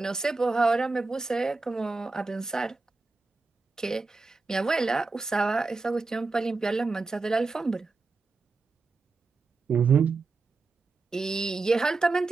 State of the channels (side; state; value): left; quieter; 3.9 dB